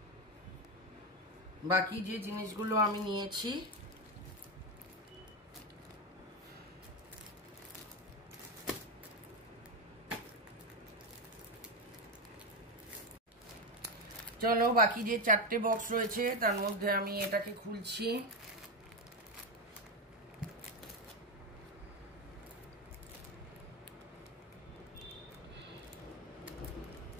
বাকি যে জিনিসগুলো আমি নিয়েছি, চলো বাকি যে 4টে বক্স রয়েছে তার মধ্যে আমি এটাকে খুলছি।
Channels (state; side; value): normal; both; correlation 0.11